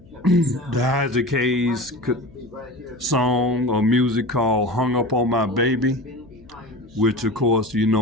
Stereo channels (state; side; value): noise; left; hum, 25 dB below the sound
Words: the Isaac Hayes song or music called Hung Up on My Baby, which of course,